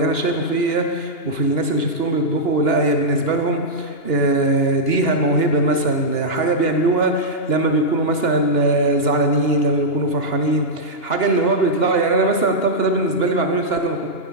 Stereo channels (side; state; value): right; late; 2.9 ms